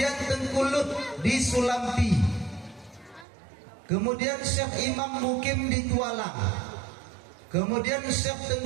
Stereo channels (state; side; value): drops out; left; at 3.2 s